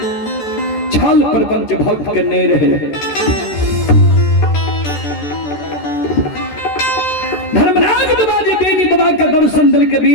छल प्रपंच भक्त के नहीं रहे धर्मराज बाबा जी बेनी बाबा के दर्शन दिल के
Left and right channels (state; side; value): late; right; 14 ms